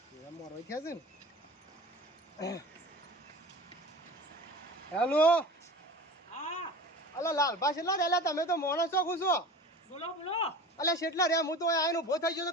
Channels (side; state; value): both; normal; correlation 0.36